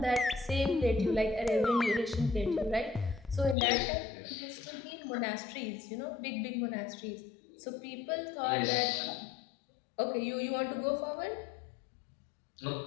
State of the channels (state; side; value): drops out; right; at 3.6 s